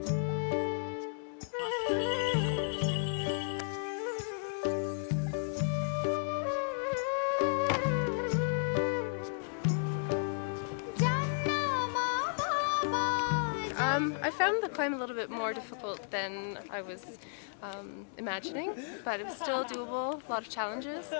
I found the climb a little bit more difficult than I was imagining, but it was still doable, a lot of challenges,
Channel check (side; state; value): right; silent; digital silence